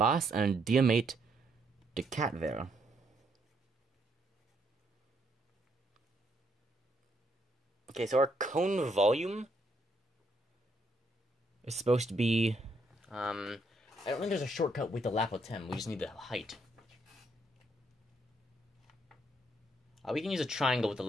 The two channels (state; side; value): normal; both; correlation 0.73